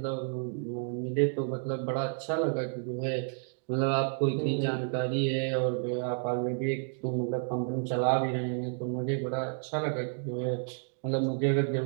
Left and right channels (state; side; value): silent; left; 57 dB below the other